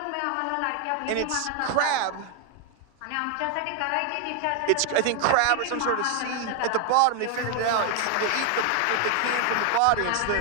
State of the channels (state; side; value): different; both; correlation 0.01